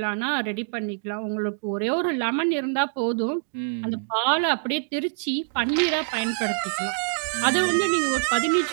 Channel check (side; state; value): left; silent; digital silence